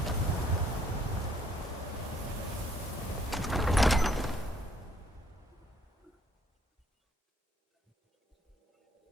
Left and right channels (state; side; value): normal; both; correlation 0.64